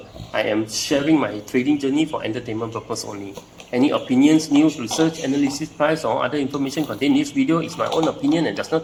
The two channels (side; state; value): both; identical; correlation 1.00